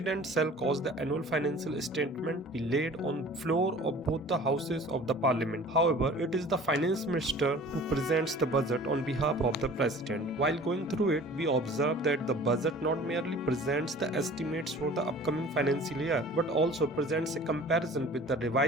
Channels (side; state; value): both; normal; correlation 0.45